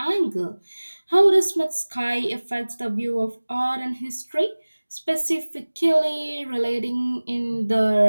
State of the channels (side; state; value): both; inverted; correlation -1.00